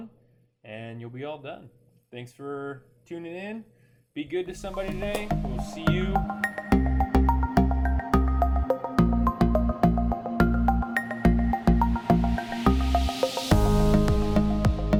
and you'll be all done. Thanks for tuning in. Be good to somebody today. We'll see you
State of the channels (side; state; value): both; identical; correlation 1.00